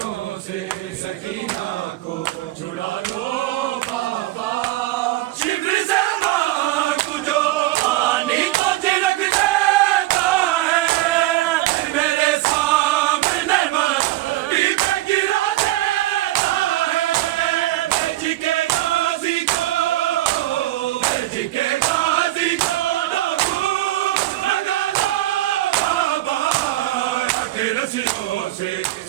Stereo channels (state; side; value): quieter; left; 16.4 dB